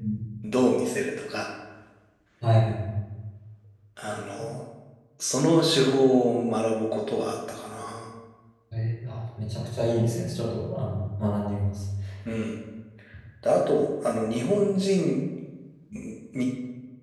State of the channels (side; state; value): both; identical; correlation 1.00